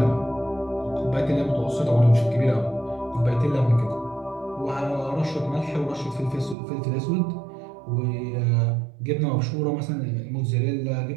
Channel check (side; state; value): left; drops out; at 6.6 s